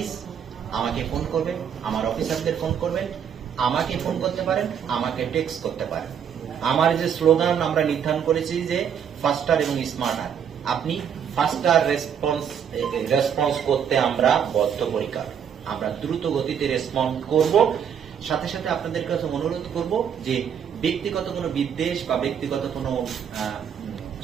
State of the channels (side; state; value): left; quieter; 8.1 dB